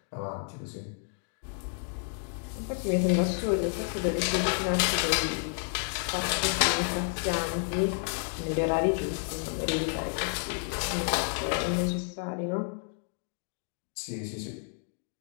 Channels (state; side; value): silent; right; 57 dB below the other